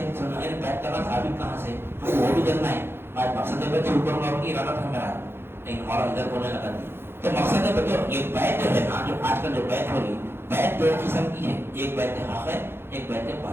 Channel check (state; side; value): late; left; 0.11 ms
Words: بیت کرنا ثابت کہاں سے؟ ہم کو وہ بھی کرنا ہے۔ آج مقصد بیت سے اوپر ماروں کی ارادہ تھا میرا، لیکن ہمارا ادھر بولنے لگا نہیں۔ تو مقصد بیت یہ بیت جو ہے نا، جو آج کل جو بیت ہو رہی، بیت دو قسم کی ہے، ایک بیت حق ہے، ایک بیت